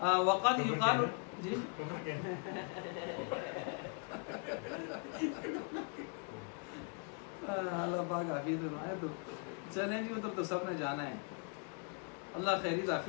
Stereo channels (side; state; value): right; quieter; 38.7 dB